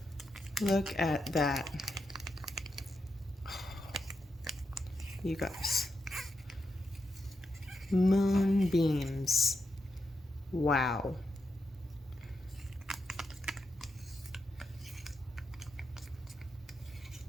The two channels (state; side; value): normal; both; correlation 0.86